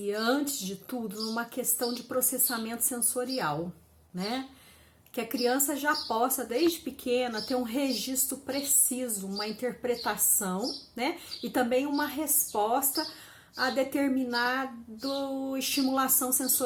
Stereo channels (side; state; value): both; identical; correlation 1.00